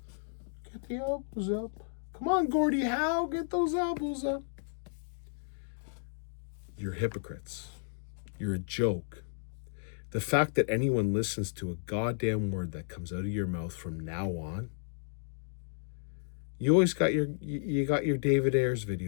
Get the elbows up. Come on, Gordie Howe, get those elbows up. You're hypocrites. You're a joke. The fact that anyone listens to a goddamn word that comes out of your mouth from now on, you always got you got your David Ayers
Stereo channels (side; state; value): right; silent; digital silence